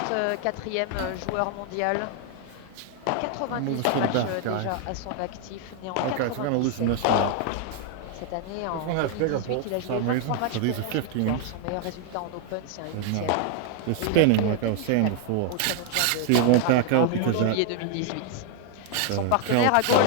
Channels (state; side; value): different; both; correlation 0.00